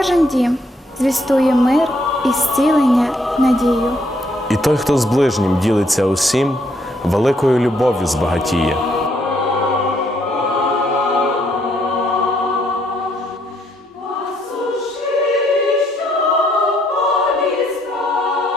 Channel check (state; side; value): normal; both; correlation 0.71